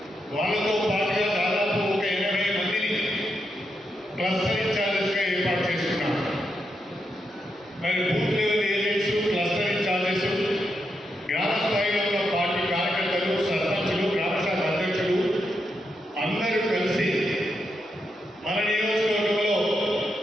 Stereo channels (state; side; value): normal; both; correlation 0.83